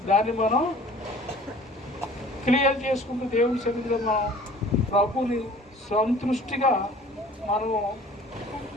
దాన్ని మనం క్లియర్ చేసుకుంటూ దేవుని సన్నిధిలో మనం ప్రభుని సంతృష్టిగా మనము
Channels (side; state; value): both; normal; correlation 0.49